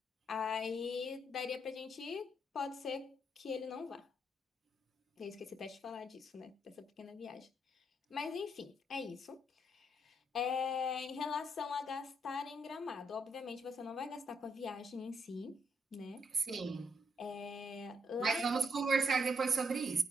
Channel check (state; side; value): normal; both; correlation 0.74